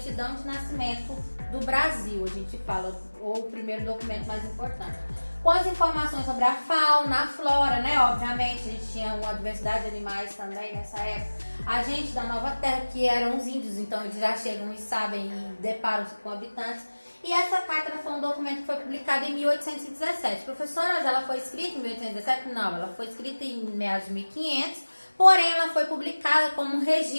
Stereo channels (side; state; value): both; inverted; correlation -1.00